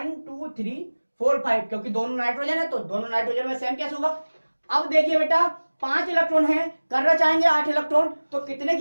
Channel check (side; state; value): both; inverted; correlation -1.00